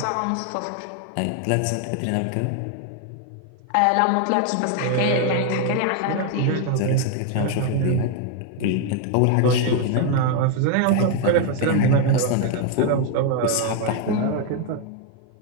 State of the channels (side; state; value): both; different; correlation 0.01